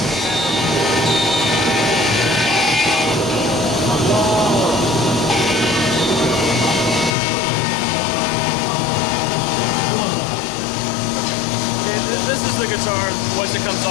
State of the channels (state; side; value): drops out; right; at 7.2 s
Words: guitar once it comes